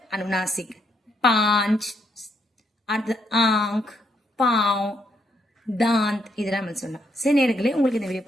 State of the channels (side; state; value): both; normal; correlation 0.75